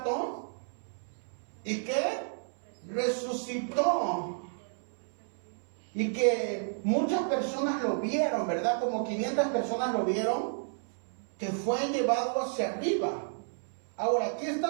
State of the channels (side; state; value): left; silent; 57 dB below the other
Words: y que resucitó, y que muchas personas lo vieron, ¿verdad? Como 500 personas lo vieron, que fue llevado hacia arriba. Ahora, ¿qué